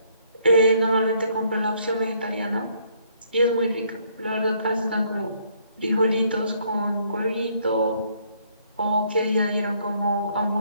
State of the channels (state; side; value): inverted; both; correlation -0.67